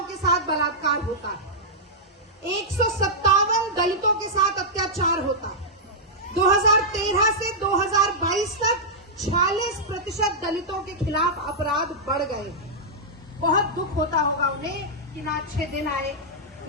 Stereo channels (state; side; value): normal; both; correlation -0.09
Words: के साथ बलात्कार होता है, 157 दलितों के साथ अत्याचार होता है। 2013 से 2022 तक 46% दलितों के खिलाफ अपराध बढ़ गए। बहुत दुख होता होगा उन्हें कि ना अच्छे दिन आए,